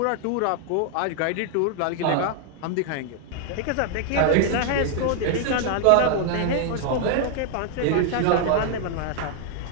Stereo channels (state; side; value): different; both; correlation 0.00